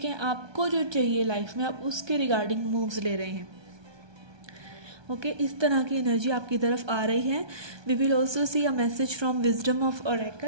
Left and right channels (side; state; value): left; late; 1.2 ms